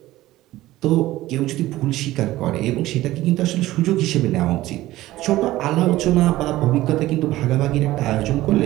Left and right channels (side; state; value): left; quieter; 16.3 dB